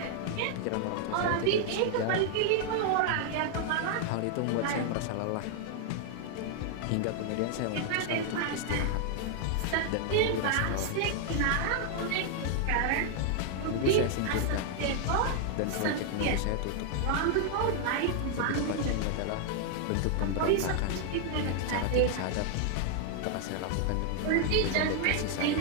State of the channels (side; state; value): both; different; correlation 0.00